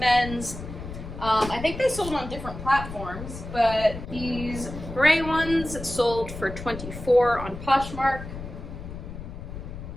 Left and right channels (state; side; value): noise; left; rumble, 10 dB below the sound